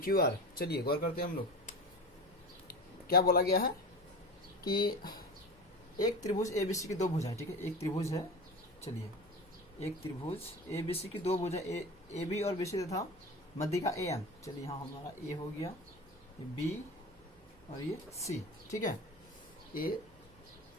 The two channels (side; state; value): left; noise; rumble, 27 dB below the sound